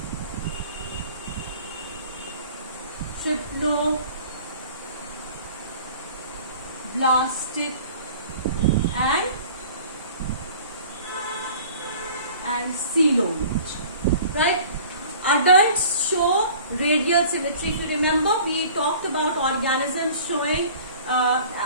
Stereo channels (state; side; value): inverted; both; correlation -0.46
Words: triploblastic and coelomate. Right? Adults show radial symmetry. If you remember, we talked about organisms showing